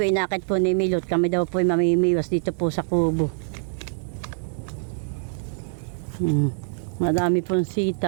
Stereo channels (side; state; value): left; silent; digital silence